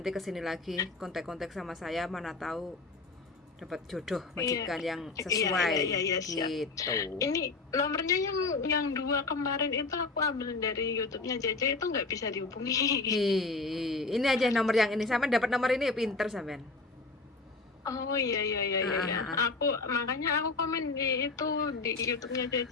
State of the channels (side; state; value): right; quieter; 3.7 dB